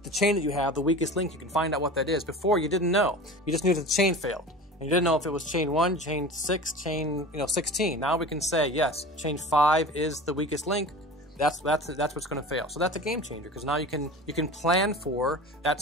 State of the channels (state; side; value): normal; both; correlation 0.35